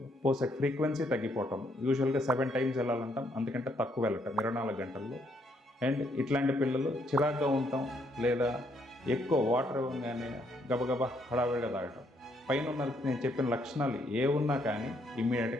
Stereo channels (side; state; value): both; normal; correlation 0.72